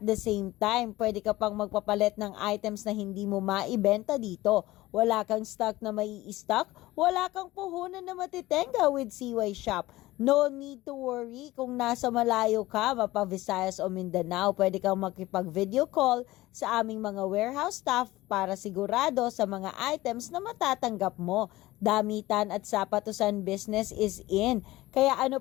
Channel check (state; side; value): quieter; right; 17.9 dB